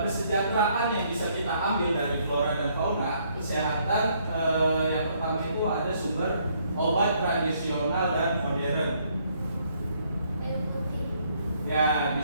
yang bisa kita ambil dari flora dan fauna, kesehatan yang pertama itu ada sumber obat tradisional dan modern. Ya,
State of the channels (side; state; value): both; inverted; correlation -0.68